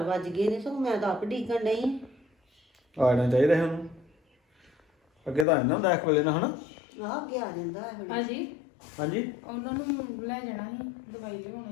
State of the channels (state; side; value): drops out; right; at 5.5 s